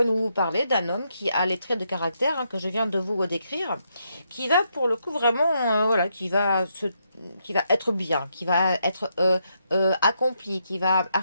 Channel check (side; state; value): both; inverted; correlation -0.79